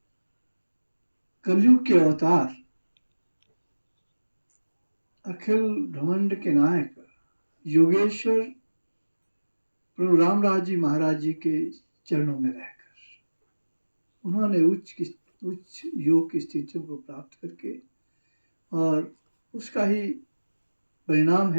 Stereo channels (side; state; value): both; inverted; correlation -1.00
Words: कलयुग के अवतार अखिल ब्रह्मांड के नायक योगेश्वर प्रभु रामराज जी महाराज जी के चरणों में रहकर उन्होंने उच्च योग की स्थितियों को प्राप्त करके, और उसका ही परिणाम